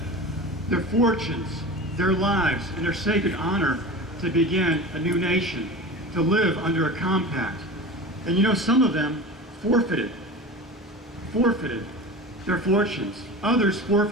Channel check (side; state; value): both; normal; correlation 0.32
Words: their fortunes, their lives, and their sacred honor to begin a new nation, to live under a compact. And you know, some of them forfeited their fortunes. Others